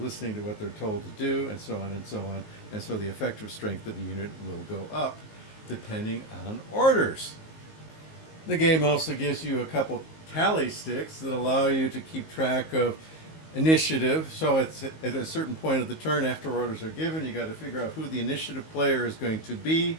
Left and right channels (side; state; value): right; late; 19 ms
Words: to what they're told to do, and so on and so on. And so the effective strength of the unit will go up depending on orders. The game also gives you a couple tally sticks that allow you to keep track of initiative. So it's at a certain point of the turn, after orders are given, you got to figure out who the initiative player is going to be,